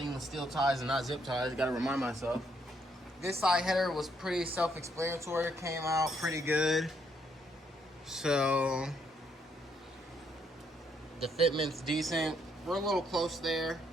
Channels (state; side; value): normal; both; correlation 0.72